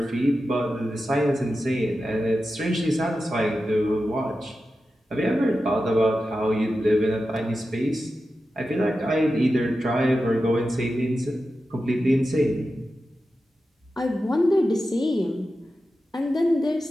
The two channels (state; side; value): normal; both; correlation 0.92